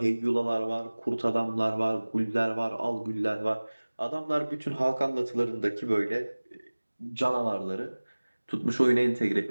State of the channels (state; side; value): inverted; both; correlation -1.00